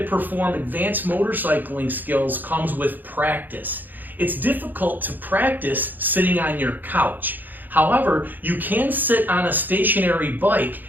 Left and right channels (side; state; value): left; late; 0.087 ms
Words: perform advanced motorcycling skills comes with practice. It's difficult to practice sitting on your couch. However, you can sit on a stationary bike